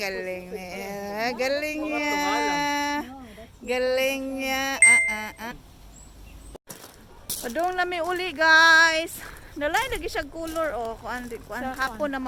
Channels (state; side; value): identical; both; correlation 1.00